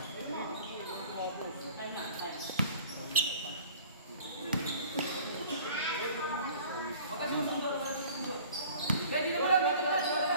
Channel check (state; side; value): inverted; both; correlation -0.48